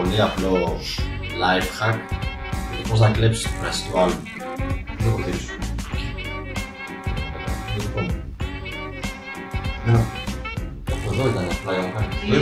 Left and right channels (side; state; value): both; identical; correlation 1.00